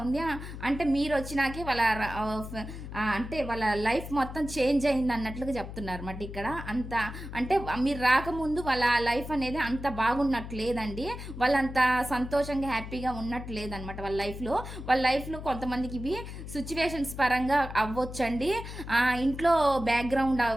ఉంది. అంటే మీరు వచ్చినాకే వాళ్ళ అంటే వాళ్ళ లైఫ్ మొత్తం చేంజ్ అయింది అన్నట్లుగా చెప్తున్నారు అన్నమాట ఇక్కడ. అంత అంటే మీరు రాకముందు వాళ్ళ లైఫ్ అనేది అంత బాగున్నట్లేదండి, వాళ్ళంత సంతోషంగా హ్యాపీగా ఉన్నట్లేదనమాట వాళ్ళ లైఫ్లో కొంతమందికి ఇవి సిచ్యువేషన్స్ పరంగా అవ్వచ్చండి, ఇంట్లో బ్యాక్గ్రౌండ్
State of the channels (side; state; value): left; noise; hum, 10 dB below the sound